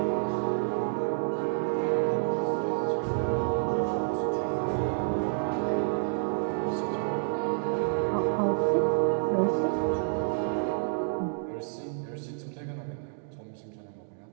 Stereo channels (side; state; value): left; silent; digital silence